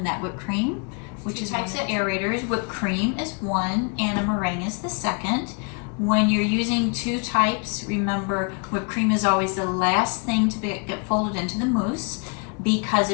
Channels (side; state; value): right; quieter; 37.1 dB